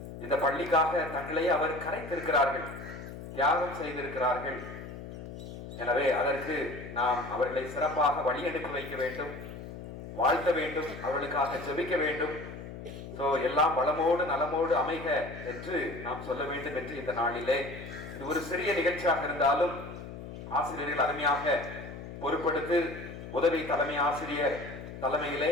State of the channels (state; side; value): noise; left; hum, 11 dB below the sound